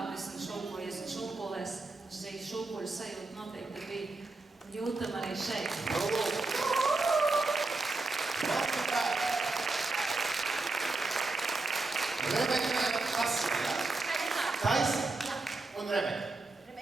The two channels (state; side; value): quieter; left; 3.4 dB